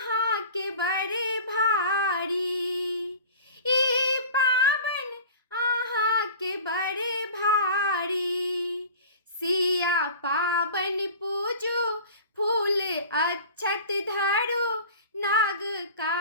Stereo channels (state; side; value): inverted; both; correlation -0.39